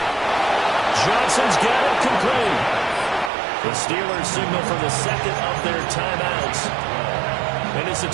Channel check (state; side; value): drops out; left; at 3.3 s